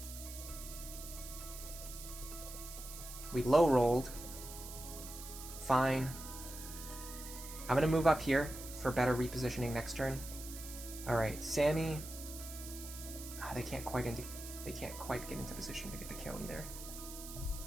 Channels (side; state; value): right; noise; hiss, 11 dB below the sound